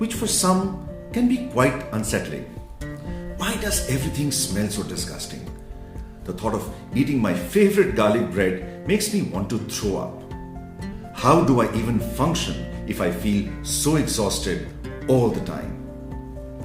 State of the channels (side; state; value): both; identical; correlation 1.00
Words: for some can be quite unsettling. Why does everything smell so disgusting? The thought of eating my favorite garlic bread makes me want to throw up. How do I even function if I feel so exhausted all the time?